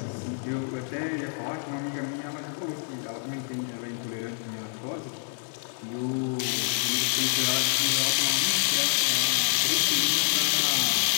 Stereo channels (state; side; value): silent; right; digital silence